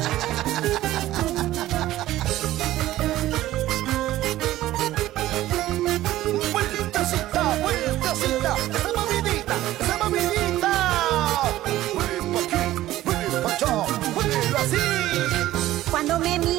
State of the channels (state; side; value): quieter; left; 15.0 dB